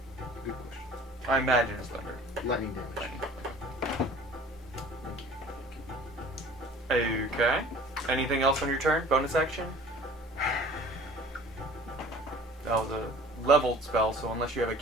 good question. I imagine it's thunder. Lightning damage. Lightning. Okay. Anything else on your turn? Bonus action? That was a leveled spell, so unless you have a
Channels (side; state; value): both; normal; correlation 0.47